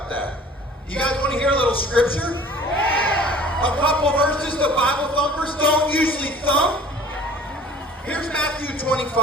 that. You guys want to hear a little scripture? Yeah. A couple verses the Bible thumpers don't usually thump. Here's Matthew 25.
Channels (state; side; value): normal; both; correlation 0.48